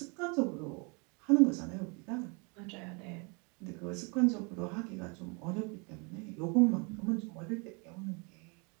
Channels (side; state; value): left; quieter; 32.7 dB